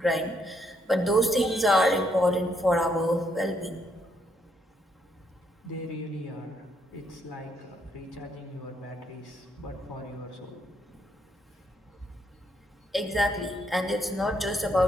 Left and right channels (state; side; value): normal; both; correlation 0.74